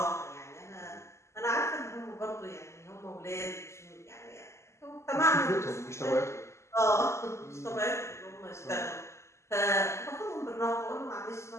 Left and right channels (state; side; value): late; right; 0.13 ms